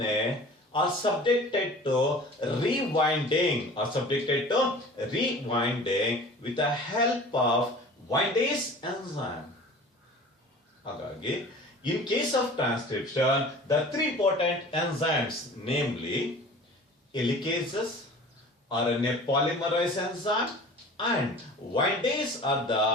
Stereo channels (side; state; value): both; normal; correlation 0.42